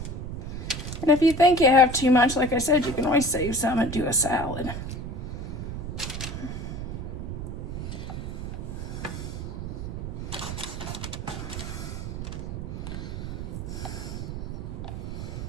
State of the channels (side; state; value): right; noise; rumble, 6 dB below the sound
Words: And if you think you have too much, like I said, you can always save some and do a salad.